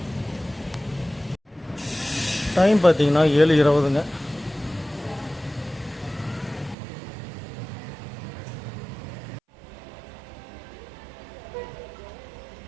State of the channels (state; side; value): drops out; left; at 6.8 s